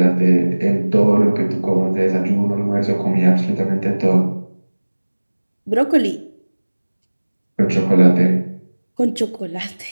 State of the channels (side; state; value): both; inverted; correlation -1.00